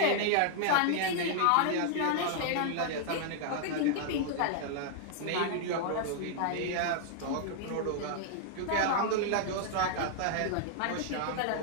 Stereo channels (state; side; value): different; both; correlation -0.01